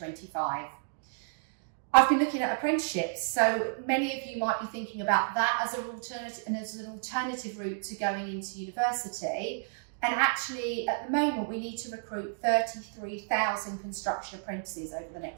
I've been looking at apprenticeships, so many of you might be thinking about that as an alternative route to going into university. And actually, at the moment, we need to recruit 33,000 construction apprentices over the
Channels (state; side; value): silent; left; digital silence